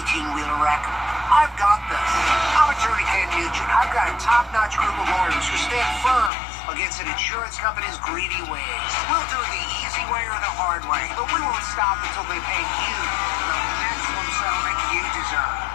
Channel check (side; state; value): right; drops out; at 6.3 s